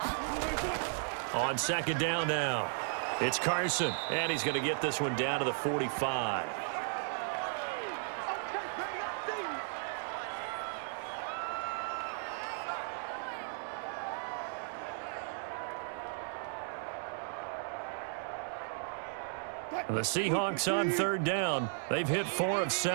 day. On second down now, it's Carson, and he's going to get this one down to the 45. The Seahawks on third down. They've hit 4 of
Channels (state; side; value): silent; left; 54 dB below the other